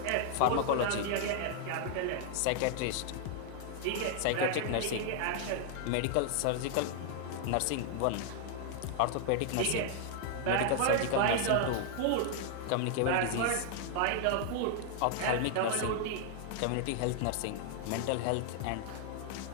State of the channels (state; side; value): different; both; correlation 0.00